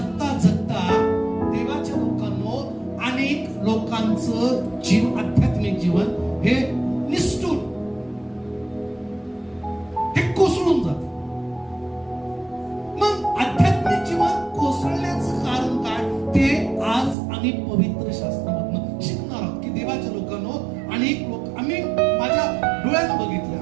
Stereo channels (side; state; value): left; drops out; at 17.2 s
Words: जगता देवाच्या लोकांनो, अनेक लोकांचं आध्यात्मिक जीवन हे निष्ठून, हे कोसळून जातं. मग आध्यात्मिक जीवन कोसळण्याचं कारण काय ते आज आम्ही पवित्र शास्त्रामधून शिकणार आहोत. की देवाच्या लोकांनो, अनेक लोक, आम्ही माझ्या डोळ्यानं